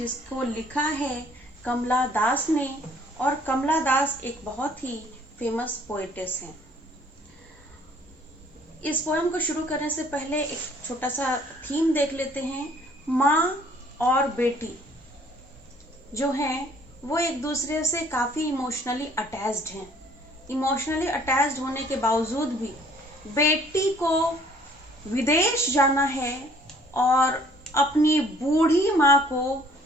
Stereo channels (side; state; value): both; normal; correlation 0.58